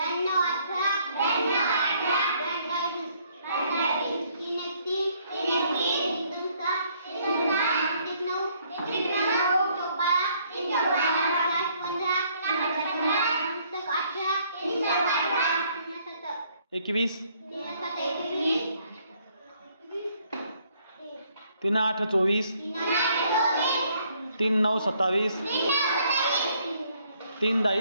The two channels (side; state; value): both; inverted; correlation -0.66